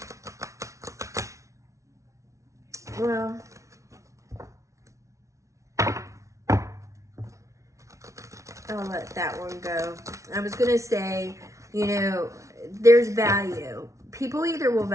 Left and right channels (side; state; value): left; late; 0.14 ms